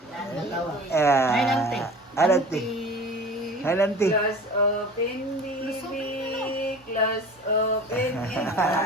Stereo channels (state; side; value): normal; both; correlation 0.39